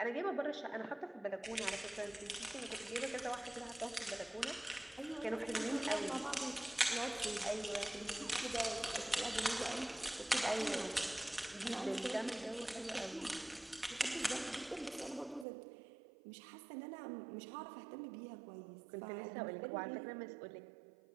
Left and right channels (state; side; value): drops out; left; at 15.5 s